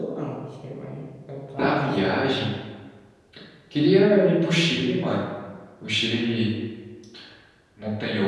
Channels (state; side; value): identical; both; correlation 1.00